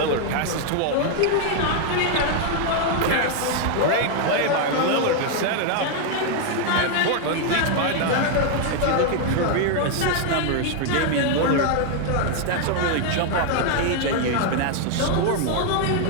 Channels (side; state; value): both; different; correlation 0.00